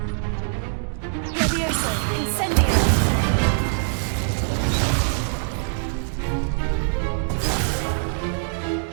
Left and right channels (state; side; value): silent; left; digital silence